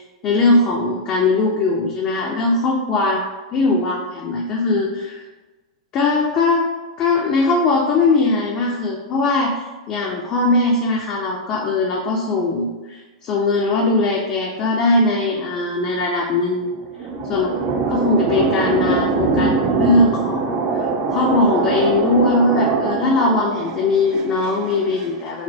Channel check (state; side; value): normal; both; correlation -0.08